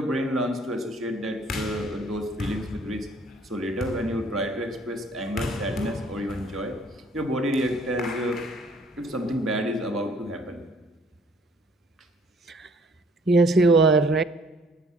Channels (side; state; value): both; normal; correlation 0.59